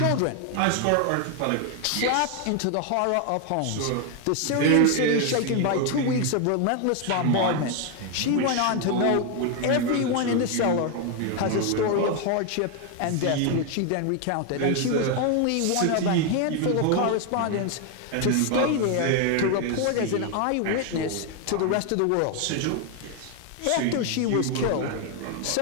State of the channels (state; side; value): different; both; correlation 0.01